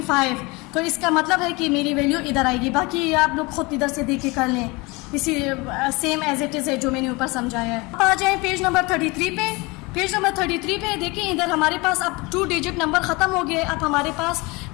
तो इसका मतलब है कि मेरी वैल्यू इधर आएगी। बाकी आप लोग खुद इधर से देख के कर लें, इसी सेम एज इट इज़ है जो मैंने ऊपर समझाया है। अब आ जाए पेज नंबर 33 पे। पेज नंबर 33 पे देखिए, इधर हमारे पास अब 2 डिजिट नंबर ख़त्म हो गए, अब हमारे पास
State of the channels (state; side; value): quieter; right; 25.2 dB